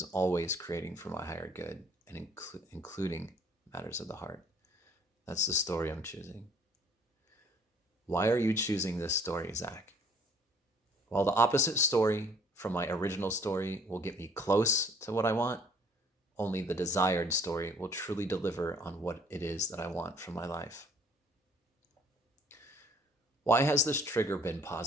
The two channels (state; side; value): normal; both; correlation 0.58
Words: always creating for my higher good and including matters of the heart. That's the story I'm choosing. Why are you choosing this story, Zach? While the opposite story from my original story will get me close to what I want, only the desired story will truly deliver on what it is that I want from my life. Why has this trigger been